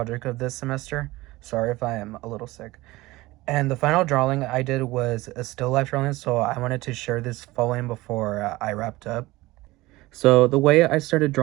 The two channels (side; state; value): left; quieter; 19.6 dB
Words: of this semester. Sorry if I am a little sick. And the final drawing I did was a still life drawing, so I wanted to share this following before I wrapped up. So the way I started